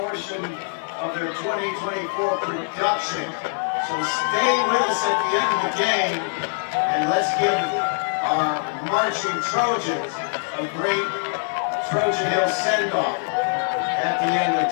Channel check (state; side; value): silent; right; 58 dB below the other